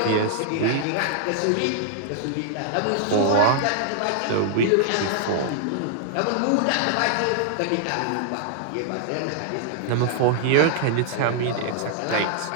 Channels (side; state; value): both; different; correlation -0.01